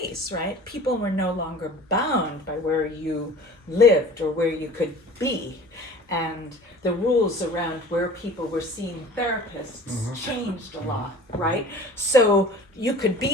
right? People were no longer bound by where you lived or where you could be. And the rules around where people were seeing therapists changed a lot, right? So you could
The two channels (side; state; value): both; normal; correlation 0.44